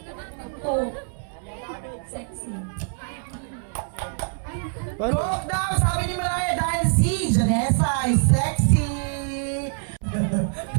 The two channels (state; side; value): silent; left; 60 dB below the other